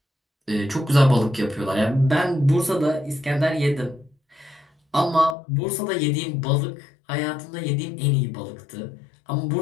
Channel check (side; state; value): right; drops out; at 5.4 s